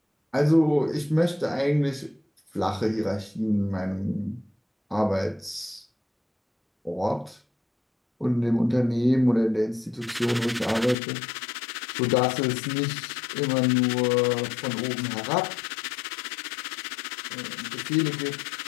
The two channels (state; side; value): drops out; right; at 11.0 s